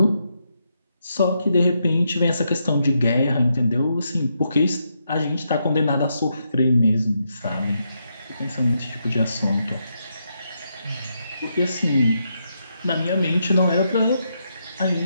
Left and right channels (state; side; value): inverted; both; correlation -0.81